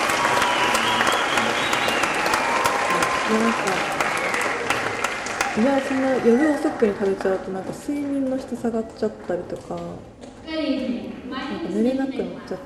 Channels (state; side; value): identical; both; correlation 1.00